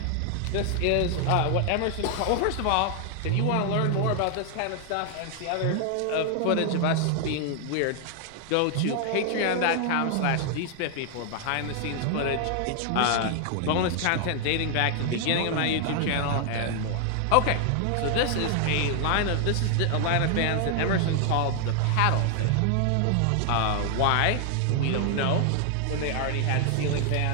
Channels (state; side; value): different; both; correlation 0.00